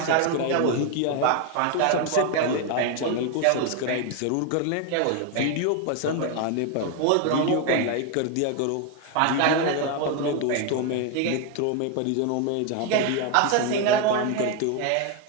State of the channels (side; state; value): both; different; correlation 0.01